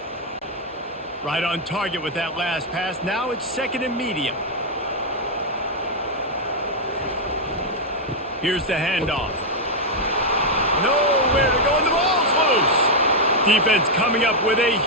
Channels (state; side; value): normal; both; correlation -0.01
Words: Right on target with that last pass. Now it's 2nd and medium. Here's the handoff. Nowhere to go, and the ball's loose. Defense coming up with a